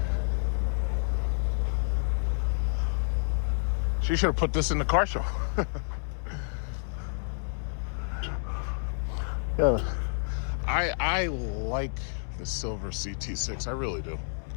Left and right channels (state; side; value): silent; right; digital silence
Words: She should have put this in the car show. Yeah. I like the silver CT6. I really do.